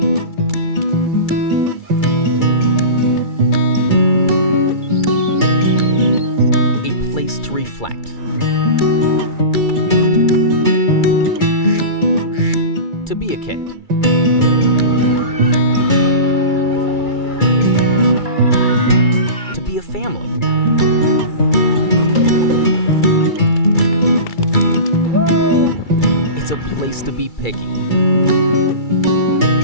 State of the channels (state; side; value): late; right; 2.3 ms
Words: A place to reflect. To be a kid. To be a family. It's a place to be picky.